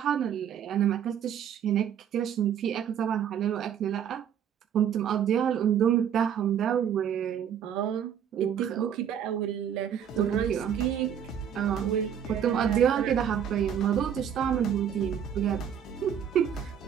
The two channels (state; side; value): quieter; left; 8.8 dB